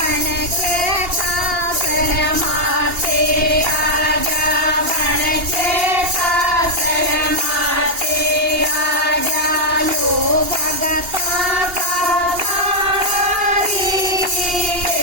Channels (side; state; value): left; late; 2.8 ms